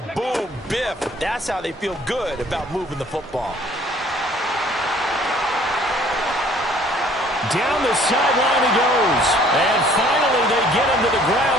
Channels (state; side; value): normal; both; correlation 0.56